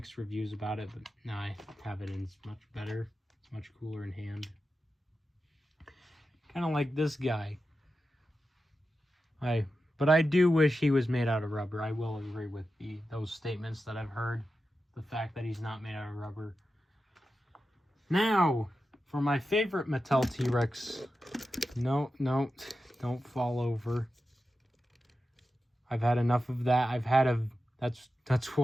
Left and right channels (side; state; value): both; normal; correlation 0.91